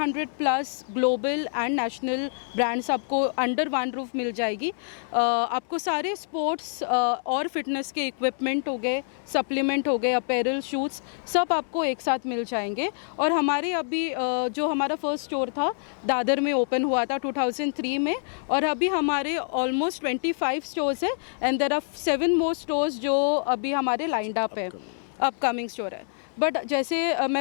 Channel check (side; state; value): right; silent; digital silence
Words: plus global and national brands आपको under one roof मिल जाएगी। आपको सारे sports और फिटनेस के इक्विपमेंट हो गए, सप्लीमेंट हो गए, अपैरल, शूज़, सब आपको एक साथ मिल जाएंगे। और हमारे अभी जो हमारा फर्स्ट स्टोर था दादर में ओपन हुआ था 2003 में, और अभी हमारे ऑलमोस्ट 25 स्टोर्स है, and there are 7 more stores जो अभी हमारे लाइंड अप है, अपकमिंग स्टोर है। बट जैसे